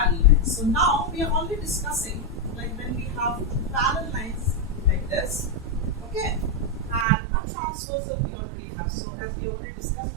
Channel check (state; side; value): drops out; left; at 7.1 s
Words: lines. So now we are only discussing like when we have two parallel lines like this, okay, and a transversal we already have. So as we already discussed